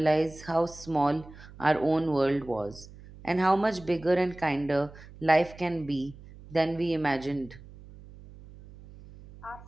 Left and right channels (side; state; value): right; noise; hum, 19 dB below the sound